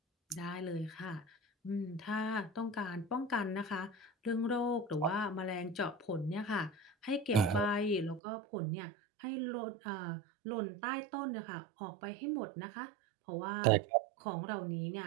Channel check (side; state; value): left; drops out; at 8.2 s